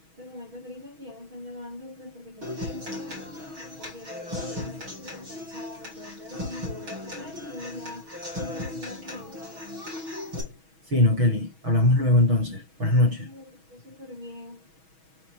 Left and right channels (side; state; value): left; late; 6.2 ms